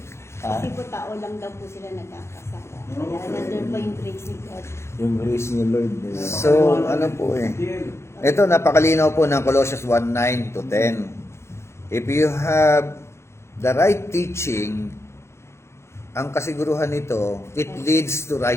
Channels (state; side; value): late; right; 0.13 ms